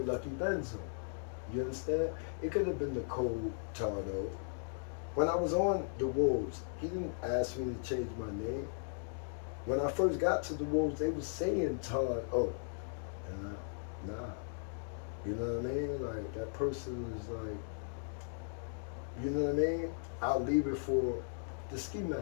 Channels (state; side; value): silent; right; digital silence